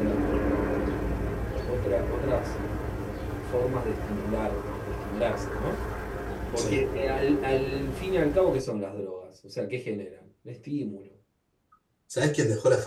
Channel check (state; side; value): identical; both; correlation 1.00